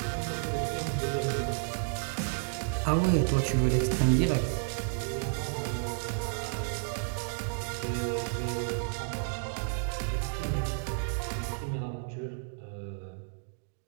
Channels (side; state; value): left; silent; digital silence